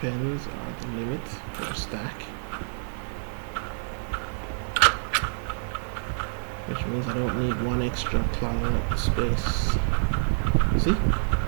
are the limit for a stack. Which means I don't need 1 extra clogging up the space. See?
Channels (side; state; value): left; silent; 58 dB below the other